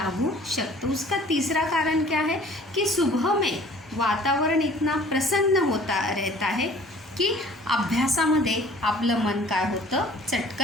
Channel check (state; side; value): normal; both; correlation 0.51